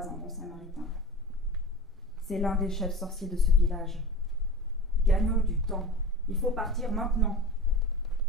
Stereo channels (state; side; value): normal; both; correlation 0.33